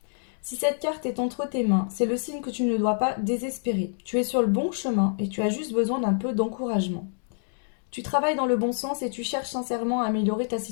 Si cette carte est entre tes mains, c'est le signe que tu ne dois pas désespérer. Tu es sur le bon chemin et tu as juste besoin d'un peu d'encouragement. Tu travailles dans le bon sens et tu cherches sincèrement à améliorer ta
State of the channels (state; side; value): silent; right; digital silence